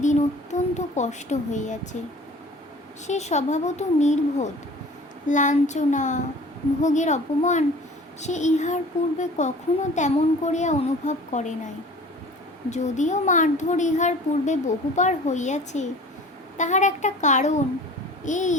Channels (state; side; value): normal; both; correlation 0.45